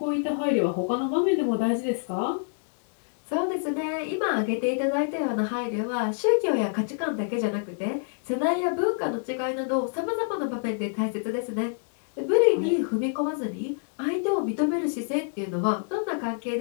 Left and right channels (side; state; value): right; silent; digital silence